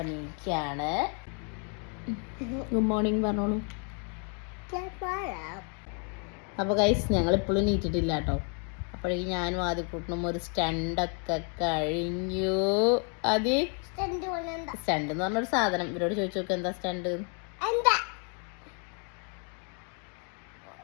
നീക്കുകയാണ്. ഗുഡ് മോർണിംഗ് പറഞ്ഞോളൂ. അപ്പോൾ ഗൈസ്, ഞങ്ങളിപ്പോഴും നീറ്റിട്ടില്ല കേട്ടോ. അപ്പോഴേക്കും ഞാനും ആദ്യക്കൂട്ടനും ഒരു സ്റ്റണ്ടൊക്കെ കഴിഞ്ഞു. സ്റ്റണ്ട് എന്ന് പറഞ്ഞൊരു സാധനം. ഇവരോട് ചോദിച്ചു നോക്ക് എന്താ സ്റ്റണ്ട്.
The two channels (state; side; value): quieter; right; 39.8 dB